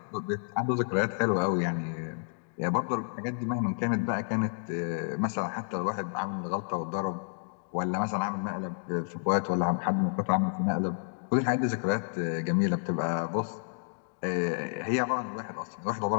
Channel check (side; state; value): right; silent; digital silence